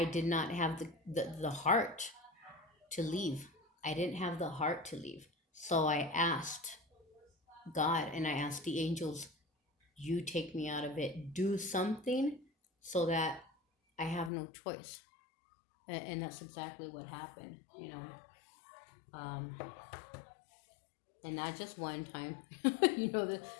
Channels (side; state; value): right; drops out; at 14.3 s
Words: did not have the heart to leave. I didn't have the heart to leave. So I asked God and I asked the angels, you take me out of it. Do something so that I have no choice. And that's exactly what happened, you know. Um, and not just one time. You know,